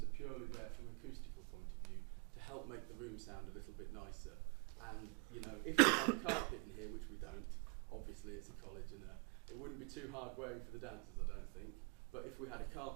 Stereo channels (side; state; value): left; quieter; 32.9 dB